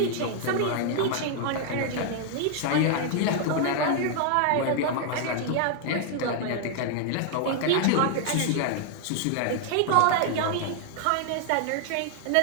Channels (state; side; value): different; both; correlation 0.00